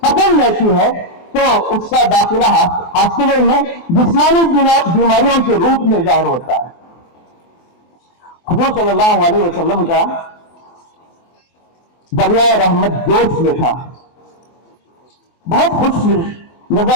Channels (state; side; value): late; right; 24 ms